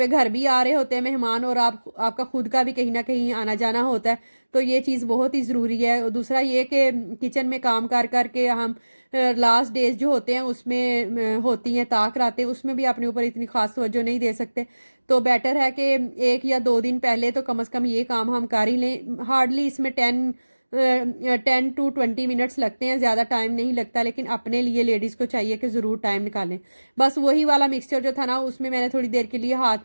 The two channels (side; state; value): both; inverted; correlation -1.00